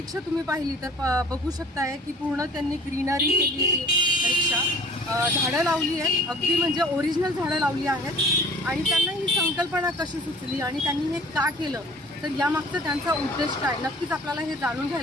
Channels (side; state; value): both; normal; correlation 0.49